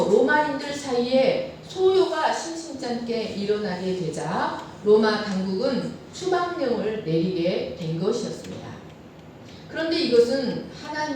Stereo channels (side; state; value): both; identical; correlation 1.00